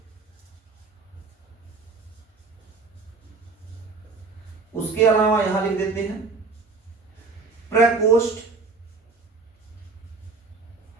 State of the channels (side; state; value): left; quieter; 4.2 dB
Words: उसके अलावा यहां लिख देते हैं प्रकोष्ठ